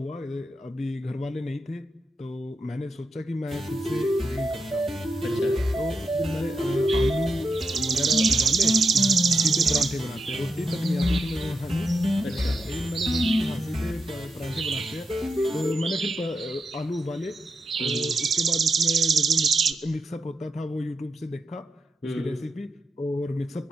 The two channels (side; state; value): both; normal; correlation 0.86